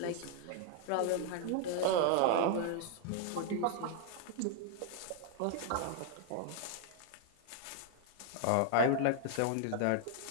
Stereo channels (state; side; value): different; both; correlation -0.01